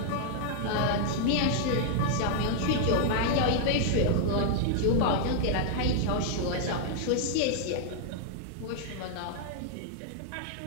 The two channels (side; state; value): both; different; correlation -0.01